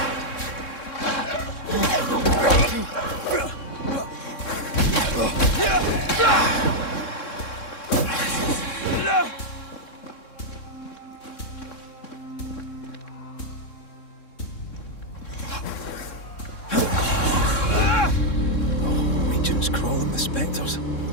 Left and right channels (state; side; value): late; right; 3.6 ms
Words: Region's crawling with spectres.